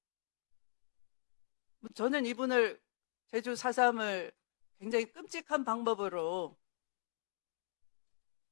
저는 이분을 제주 4.3을 굉장히 끔찍한 방법으로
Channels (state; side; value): silent; right; digital silence